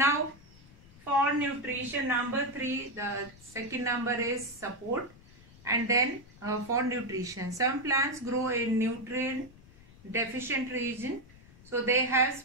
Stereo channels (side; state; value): left; noise; rumble, 23 dB below the sound